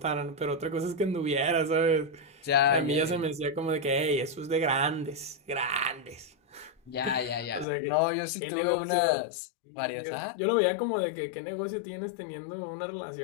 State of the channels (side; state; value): right; drops out; at 7.7 s